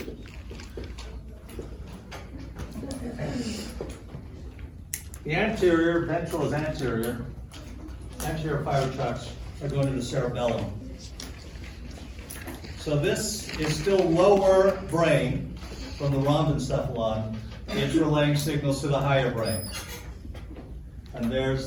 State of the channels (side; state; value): both; identical; correlation 1.00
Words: The anterior, ventral is anterior. Anterior fiber tracts are going to the cerebellum. So this is still lower brain from the rhombencephalon. It's relaying signals to the higher brain. And